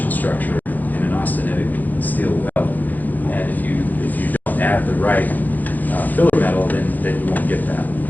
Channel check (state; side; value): late; right; 0.084 ms